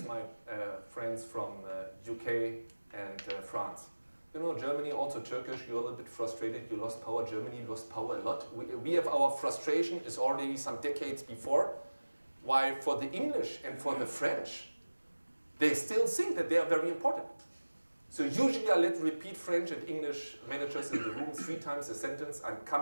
my friends from UK and France. You know, Germany, also Turkish, you're a little bit frustrated, you lost power. Germany lost power a lot. We have our frustration is already some decades before. While for the English and for the French, they still think that they are very important. So usually I let repeat French and English managers in the room 3 times a sentence. I'm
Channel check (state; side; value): inverted; both; correlation -1.00